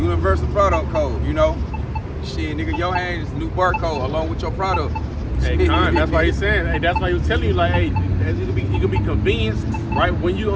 product code, Shit, nigga, your hand is the new barcode along with your product. Hey, Con, that's why he's saying, hey, that's why he was telling you, like, hey, you can be convenienced, right? When you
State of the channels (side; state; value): both; identical; correlation 1.00